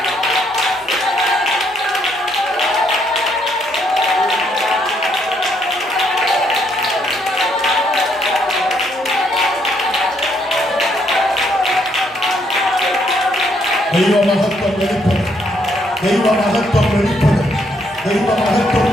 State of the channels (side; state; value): both; normal; correlation 0.72